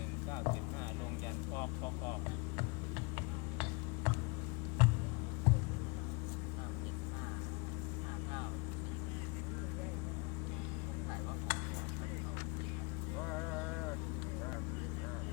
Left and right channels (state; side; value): quieter; right; 28.3 dB